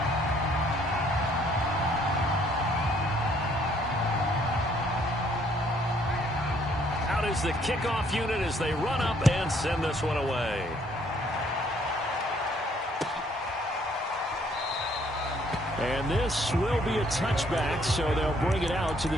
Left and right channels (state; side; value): normal; both; correlation 0.65